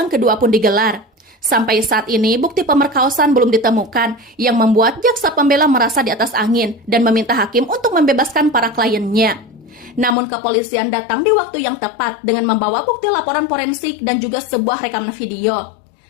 kedua pun digelar. Sampai saat ini, bukti pemerkosaan belum ditemukan yang membuat jaksa pembela merasa di atas angin dan meminta hakim untuk membebaskan para kliennya. Namun kepolisian datang di waktu yang tepat dengan membawa bukti laporan forensik dan juga sebuah rekaman video.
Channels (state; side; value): drops out; right; at 10.2 s